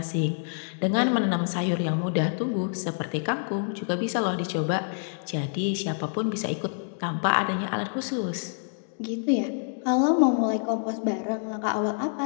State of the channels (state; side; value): silent; right; 60 dB below the other